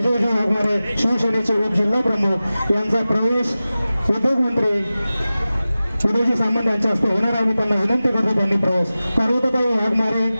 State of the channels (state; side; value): inverted; both; correlation -0.96